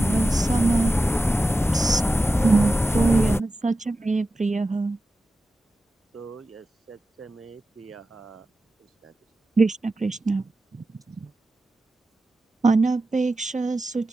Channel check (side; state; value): both; normal; correlation 0.92